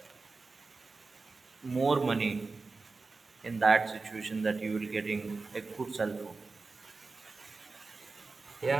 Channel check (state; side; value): quieter; left; 4.0 dB